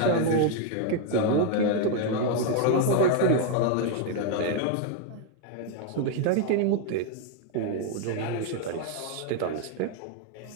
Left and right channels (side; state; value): both; different; correlation 0.01